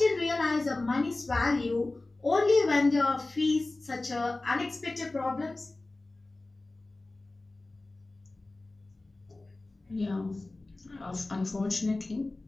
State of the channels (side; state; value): right; quieter; 3.0 dB